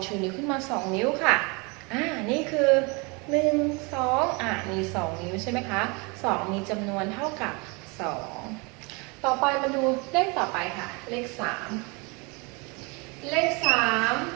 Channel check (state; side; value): quieter; left; 29.4 dB